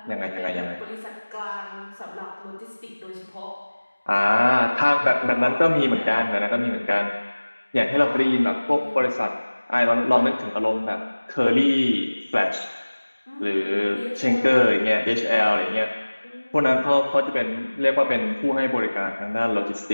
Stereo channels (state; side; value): inverted; both; correlation -1.00